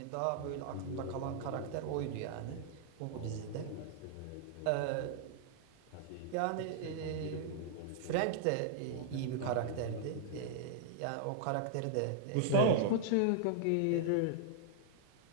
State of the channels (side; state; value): both; different; correlation -0.01